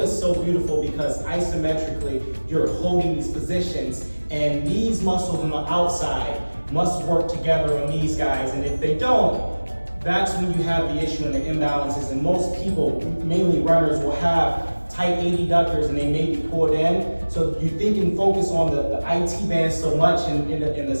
is so beautiful because isometrically, you're holding these positions, and these muscles on the outside must work together on these guys, and if they don't, that's when you have the issue and the imbalances, and most people, mainly runners, will have tight adductors and they may be pulled in. So you think and focus on the IT band so much and the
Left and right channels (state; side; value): inverted; both; correlation -1.00